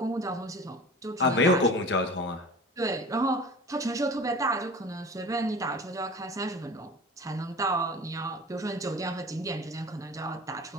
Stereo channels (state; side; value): normal; both; correlation 0.38